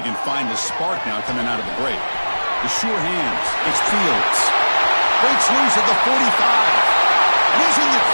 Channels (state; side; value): inverted; both; correlation -1.00